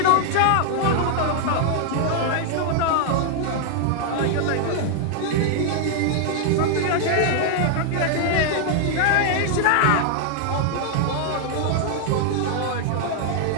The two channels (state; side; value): different; both; correlation 0.00